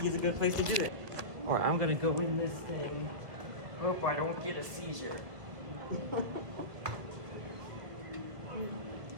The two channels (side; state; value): left; late; 1.7 ms